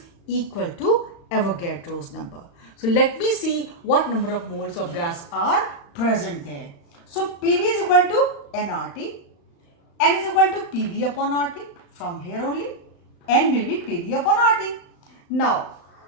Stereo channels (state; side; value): late; right; 35 ms